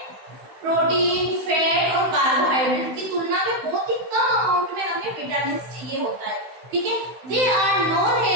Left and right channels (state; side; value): late; left; 16 ms